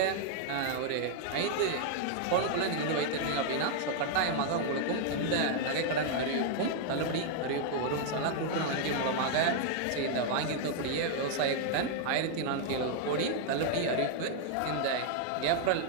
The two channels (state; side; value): different; both; correlation 0.00